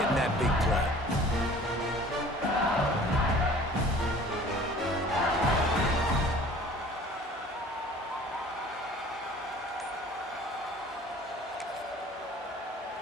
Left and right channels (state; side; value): normal; both; correlation 0.48